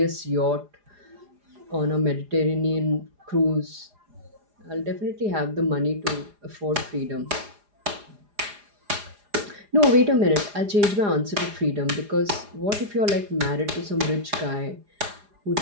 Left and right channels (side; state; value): left; late; 4.9 ms